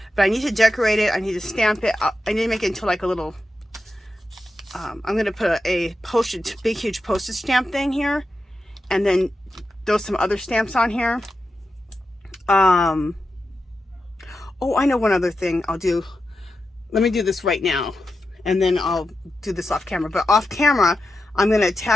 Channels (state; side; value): normal; both; correlation 0.90